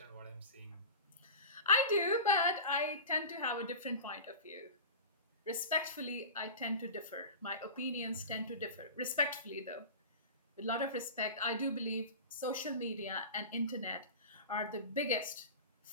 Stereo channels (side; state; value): both; inverted; correlation -0.31